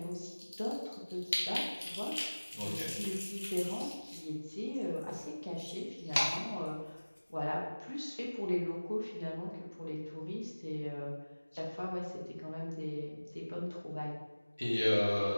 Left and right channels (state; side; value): inverted; both; correlation -1.00